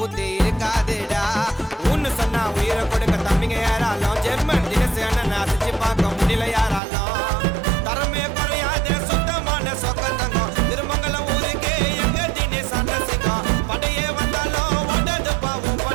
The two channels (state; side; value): drops out; left; at 6.8 s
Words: இருக்காதுடா. ஒன்னு சொன்னா உயிரை கொடுக்க தம்பிங்க யாராலும் ஜெர்மன் தினேஷ் அண்ணன் அசைச்சு பார்க்க முடியல யாராலும். தரமே குறையாத சுத்தமான சொக்கம் தங்கம் திருமங்கலம் ஊருக்கு எங்க தினேஷ் அண்ணன் சிங்கம். படையே வந்தாலும் ஓடாது பாவம்